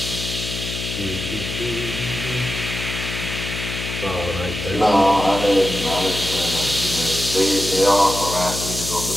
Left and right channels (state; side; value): noise; left; hum, 6 dB below the sound